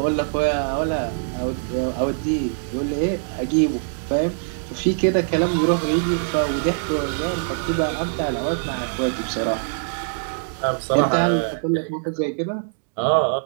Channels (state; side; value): silent; left; digital silence